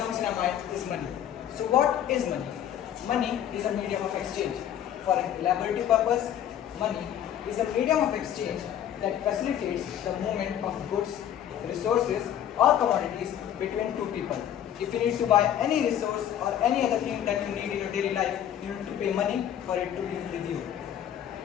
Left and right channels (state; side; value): quieter; right; 10.5 dB